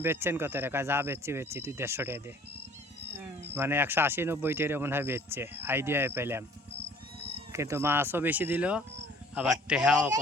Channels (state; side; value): normal; both; correlation 0.53